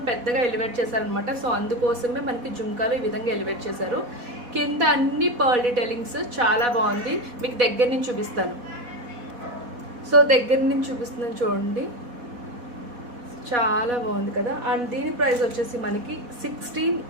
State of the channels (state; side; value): late; left; 4.1 ms